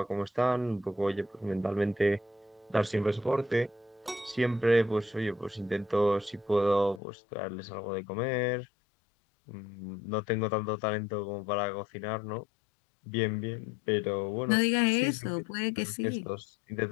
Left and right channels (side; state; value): right; drops out; at 7.0 s